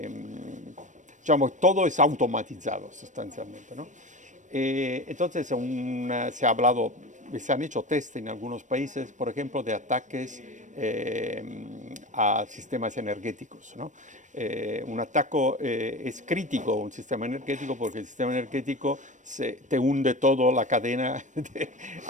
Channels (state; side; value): late; left; 0.36 ms